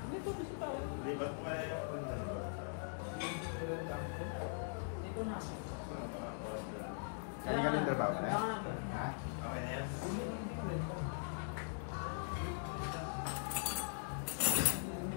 Lipat mo kaya yung pantan ko. Dito na. Para makakuha sila. Hindi ka ng trabaho pala? Ha? Okay na yan?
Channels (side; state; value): right; silent; digital silence